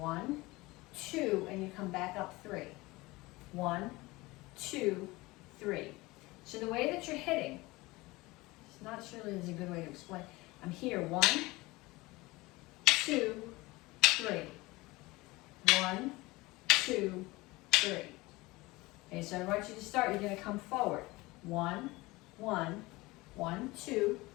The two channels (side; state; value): right; quieter; 21.5 dB